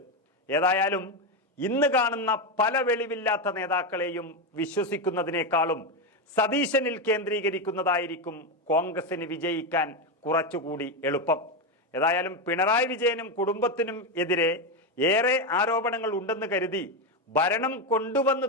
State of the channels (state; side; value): normal; both; correlation 0.10